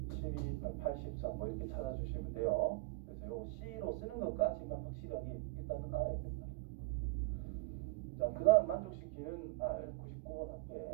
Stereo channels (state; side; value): quieter; left; 21.6 dB